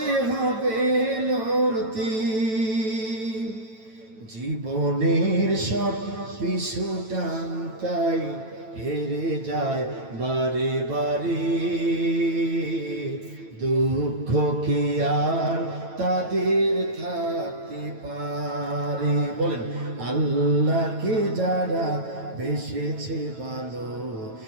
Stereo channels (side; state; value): left; late; 9.1 ms